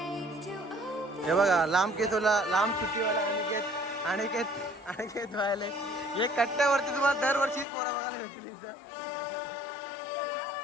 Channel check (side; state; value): right; drops out; at 7.7 s